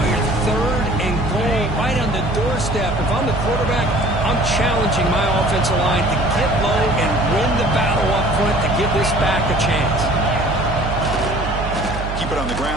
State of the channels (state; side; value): noise; right; hum, 6 dB below the sound